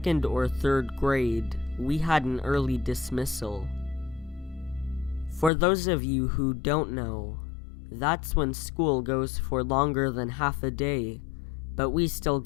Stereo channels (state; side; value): drops out; right; at 5.5 s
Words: or 3rd grade, we had an early dismissal. For those of you who don't know, that's when school goes for longer than half a day, but we still